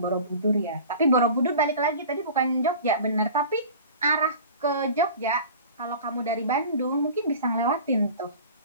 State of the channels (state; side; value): inverted; both; correlation -0.40